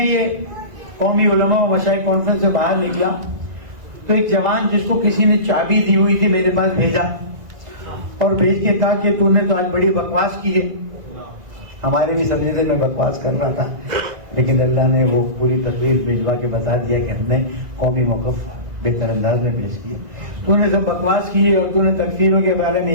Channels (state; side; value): late; left; 2.0 ms